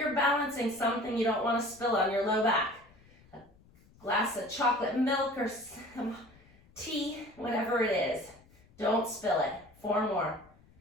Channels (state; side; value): noise; left; rumble, 28 dB below the sound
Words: balancing something you don't want to spill on your low back. A glass of chocolate milk or some tea, whatever it is. Don't spill it. 4 more.